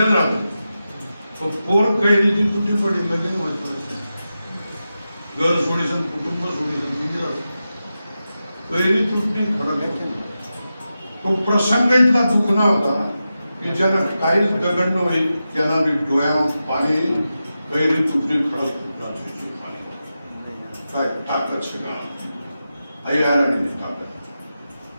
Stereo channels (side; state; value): both; inverted; correlation -0.91